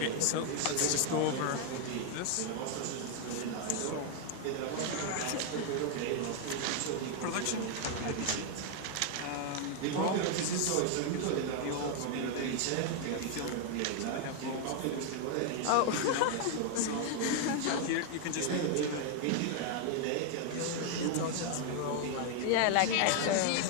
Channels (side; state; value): both; different; correlation 0.00